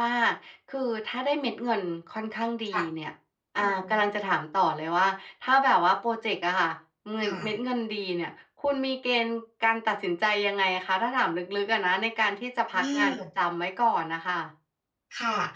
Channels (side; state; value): both; identical; correlation 1.00